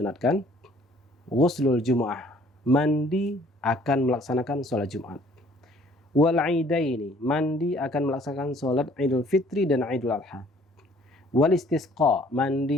Ghuslul Jumu'ah, mandi akan melaksanakan sholat Jumat. Wal Aidaini, mandi akan melaksanakan sholat Idul Fitri dan Idul Adha. Wal Istisqa,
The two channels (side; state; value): both; normal; correlation 0.58